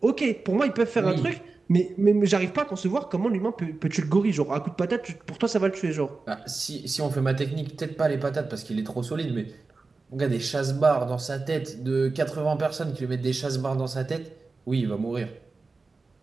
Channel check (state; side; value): quieter; left; 3.9 dB